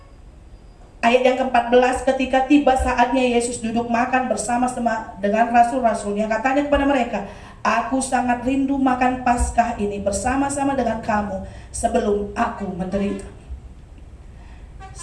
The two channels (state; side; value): identical; both; correlation 1.00